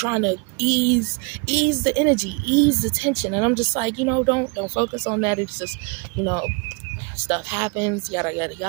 to ease the energy, ease the tension. And I'm just like, you know, don't focus on that. It's just, you know, stuff happens, yada yada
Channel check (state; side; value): quieter; left; 31.4 dB